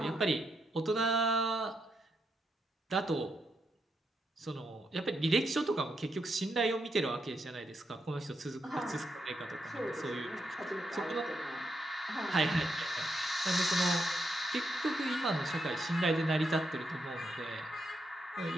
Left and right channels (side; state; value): both; normal; correlation 0.81